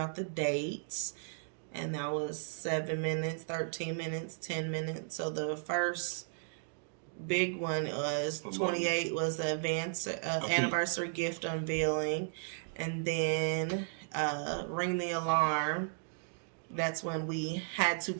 the dates, and that was 7 minutes, 13 minutes, 10 minutes. So the first big one was 28 was the anniversary gift unveiling, and then ring the alarm. That's when we had to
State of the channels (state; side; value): silent; left; digital silence